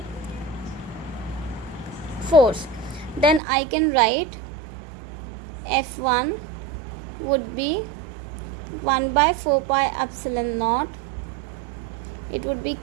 force, then I can write F1 would be 1 by 4 pi epsilon naught. It would be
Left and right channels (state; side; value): drops out; left; at 3.4 s